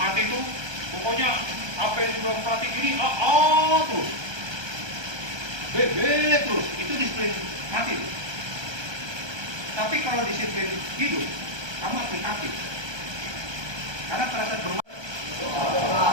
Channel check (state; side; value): late; left; 1.2 ms